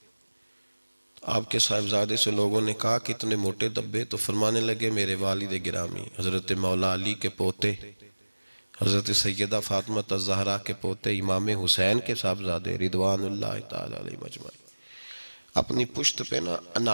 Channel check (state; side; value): inverted; both; correlation -1.00